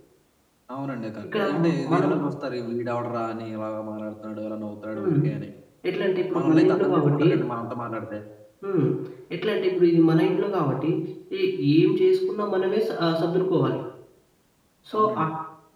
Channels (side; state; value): both; identical; correlation 1.00